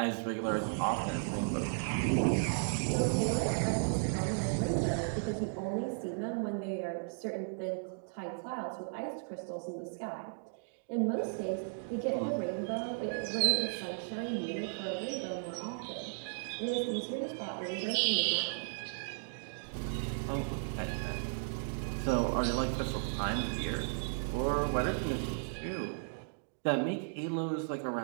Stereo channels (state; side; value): silent; left; digital silence